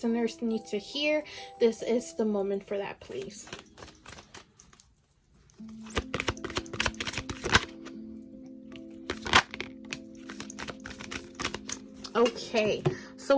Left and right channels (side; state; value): both; identical; correlation 1.00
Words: need to hear, this is the moment for that, please. Okay, so